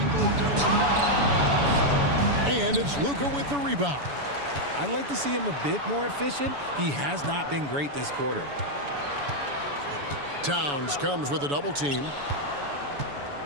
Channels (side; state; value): left; late; 7.0 ms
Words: And it's Luka with the rebound. I'd like to see him a bit more efficient. He has not been great this quarter. Towns comes with a double team.